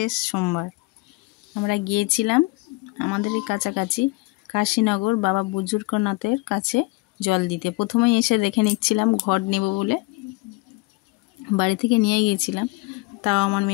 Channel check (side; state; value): right; quieter; 24.5 dB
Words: সোমবার। আমরা গিয়েছিলাম আমাদের কাছাকাছি কাশীনগর বাবা বুজুর্গনাথের কাছে জল দিতে। প্রথমেই এসে দেখে নিচ্ছিলাম ঘট নেব বলে, বাড়ি থেকে নিয়ে গিয়েছিলাম। তাও আমার